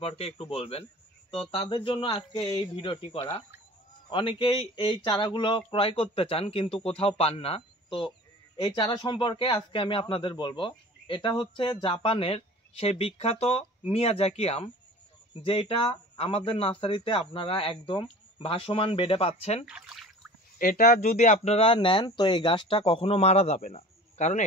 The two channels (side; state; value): both; normal; correlation 0.42